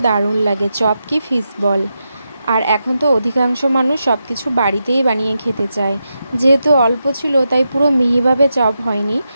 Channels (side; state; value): both; inverted; correlation -0.87